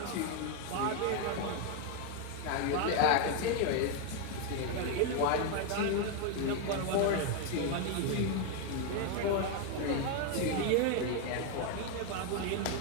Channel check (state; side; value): different; both; correlation 0.01